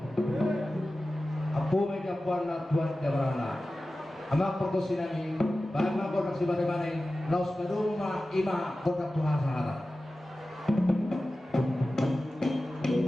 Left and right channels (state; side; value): normal; both; correlation 0.95